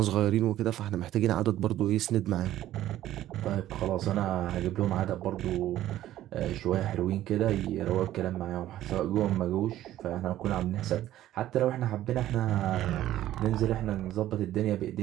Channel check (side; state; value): left; quieter; 13.5 dB